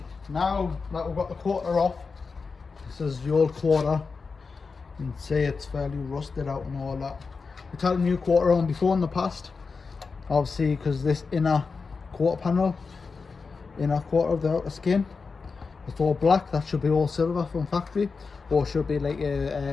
now that we've got the quarter off, this is the old quarter. You can see it's fairly rusted out and all that. We've had a new quarter on before in the past, obviously, because this inner quarter panel, inner quarter of the outer skin, it's all black. That should be all silver from factory, or should be like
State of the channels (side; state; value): right; quieter; 4.7 dB